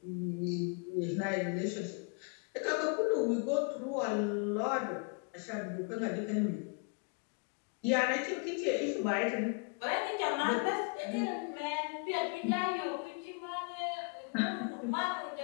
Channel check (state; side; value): quieter; right; 35.9 dB